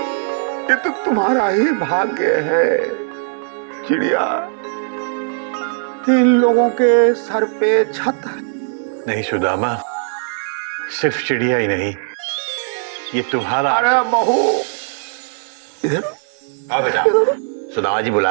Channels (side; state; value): left; silent; digital silence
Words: ये तो तुम्हारा ही भाग्य है चिड़िया। इन लोगों के सर पे छत है। नहीं सुदामा, सिर्फ चिड़िया ही नहीं, ये तुम्हारा। अरे बहू, इधर आओ बेटा, सुदामा जी